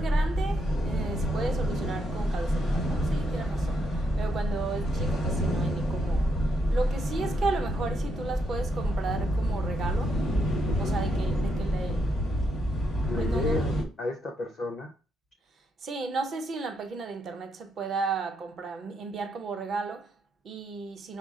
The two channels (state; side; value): normal; both; correlation 0.79